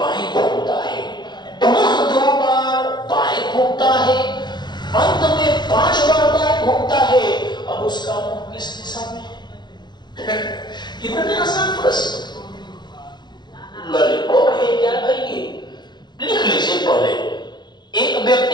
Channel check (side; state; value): right; late; 0.21 ms